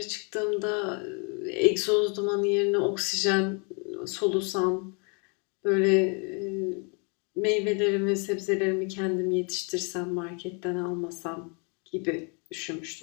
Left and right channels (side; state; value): right; quieter; 35.5 dB